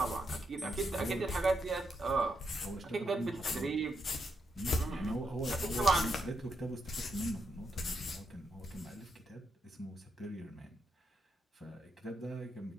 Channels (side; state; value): both; normal; correlation 0.82